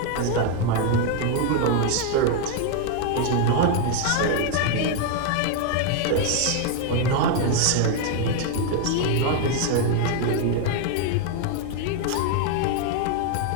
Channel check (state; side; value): different; both; correlation 0.01